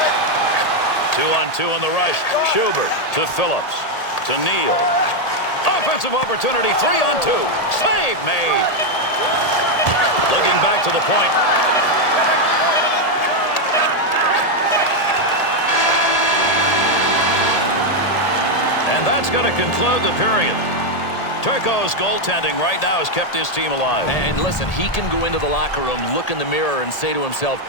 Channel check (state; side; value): late; right; 1.8 ms